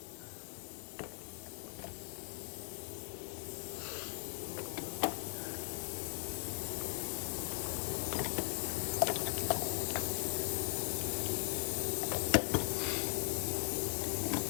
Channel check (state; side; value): silent; right; digital silence